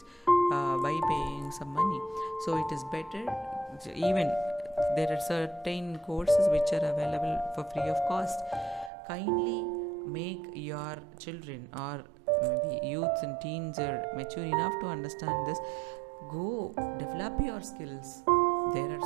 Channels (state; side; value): drops out; left; at 8.9 s